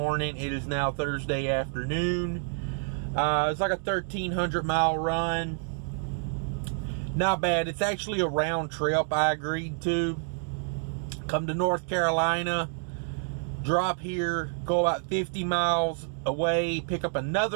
It is now Thursday afternoon. It's like a 1,300 mile run. Not bad. It's actually a round trip I agreed to. Come to North Carolina, drop here, go about 50 miles away, pick up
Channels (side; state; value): left; silent; 59 dB below the other